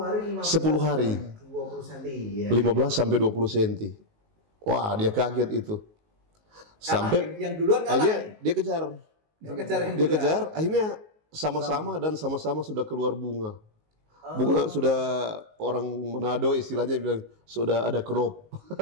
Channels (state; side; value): late; left; 19 ms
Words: 10 hari 20 cm ya. 15 sampai 20 cm. Wah, dia kaget itu. Sampai yang duluan kalah. dia kejar. Dia kejar, akhirnya sama-sama dan sama-sama sudah keluar bunga. Bunga sudah orang Manado istilahnya bilang sudah ada crop.